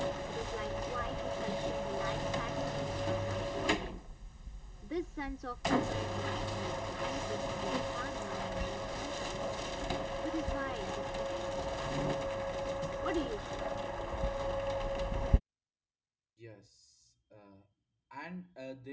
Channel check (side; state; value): both; identical; correlation 1.00